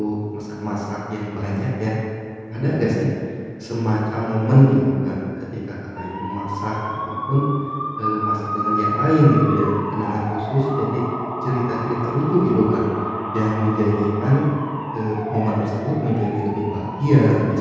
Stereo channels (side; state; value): both; identical; correlation 1.00